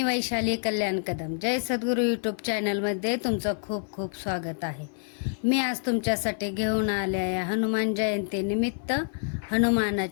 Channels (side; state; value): right; silent; 58 dB below the other